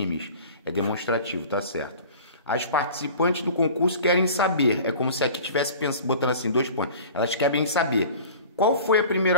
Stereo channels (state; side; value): inverted; both; correlation -0.42